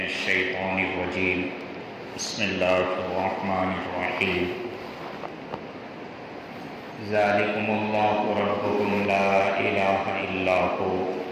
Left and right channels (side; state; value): both; identical; correlation 1.00